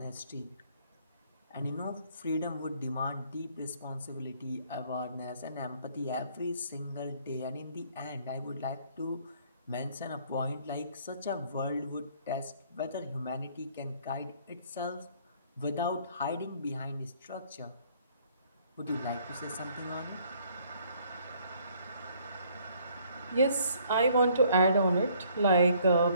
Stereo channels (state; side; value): inverted; both; correlation -0.62